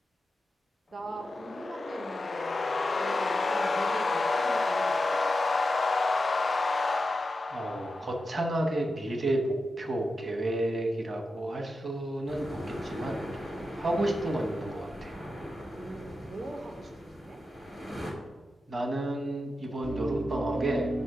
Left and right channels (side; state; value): both; normal; correlation 0.89